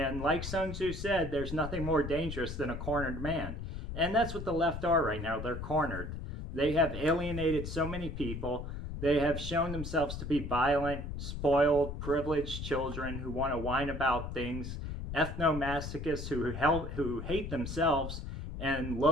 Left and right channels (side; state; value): left; noise; rumble, 6 dB below the sound